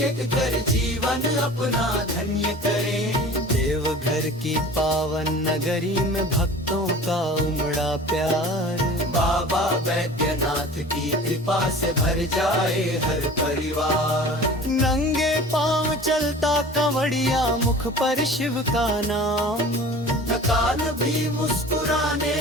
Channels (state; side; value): normal; both; correlation 0.41